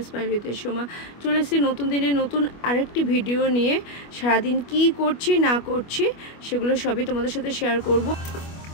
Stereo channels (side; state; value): right; late; 25 ms